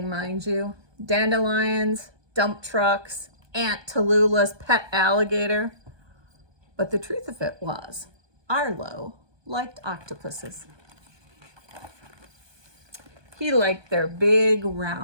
mind you. Dandelions, dump trucks, Aunt Tallulah's pet alligator. But the truth of it was, Arlo liked octopuses. He liked their big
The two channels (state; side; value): late; left; 1.2 ms